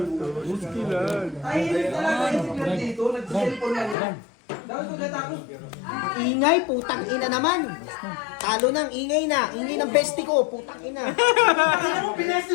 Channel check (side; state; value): right; drops out; at 4.0 s